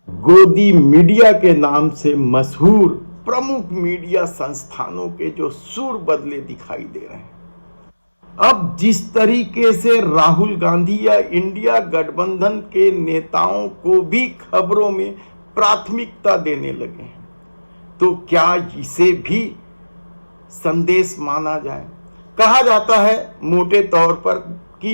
गोदी मीडिया के नाम से मशहूर प्रमुख मीडिया संस्थानों के जो सुर बदले दिखाई दे रहे हैं? अब जिस तरीके से राहुल गांधी या इंडिया गठबंधन के नेताओं को भी खबरों में प्राथमिकता देने लगे हैं, तो क्या इसे भी संदेश माना जाए? कहा जाता है मोटे तौर पर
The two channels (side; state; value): both; inverted; correlation -1.00